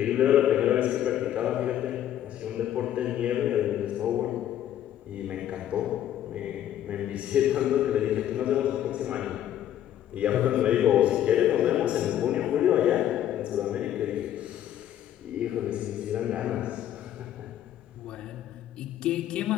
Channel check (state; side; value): quieter; right; 11.4 dB